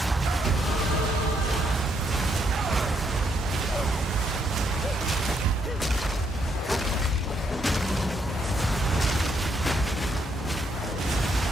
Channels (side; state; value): both; normal; correlation 0.74